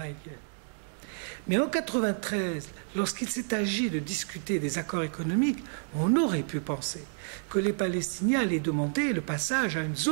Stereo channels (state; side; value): silent; left; digital silence